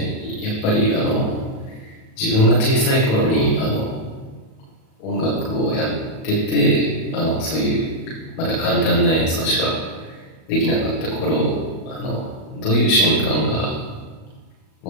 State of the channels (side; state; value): right; late; 37 ms